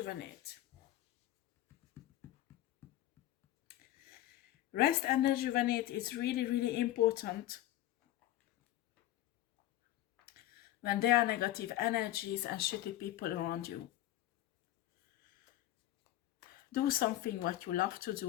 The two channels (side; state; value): right; quieter; 14.3 dB